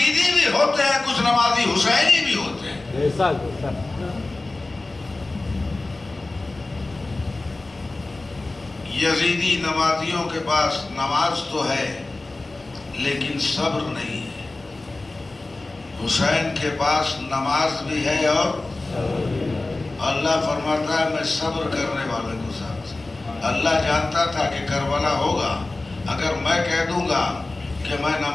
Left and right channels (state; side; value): quieter; right; 3.1 dB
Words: بھی ہوتے ہیں، کچھ نمازی حسینی بھی ہوتے ہیں۔ یزیدی نمازیوں کے پاس نماز تو ہے لیکن صبر نہیں ہے، حسین کے پاس نماز بھی ہے اور اللہ فرماتا ہے میں صبر کرنے والے کو ساتھ۔ اللہ جانتا تھا کہ کربلا ہوگا، اگر میں کہہ دوں گا کہ میں